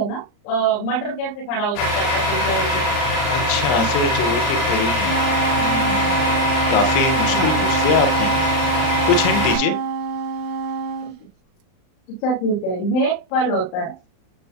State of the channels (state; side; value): late; right; 39 ms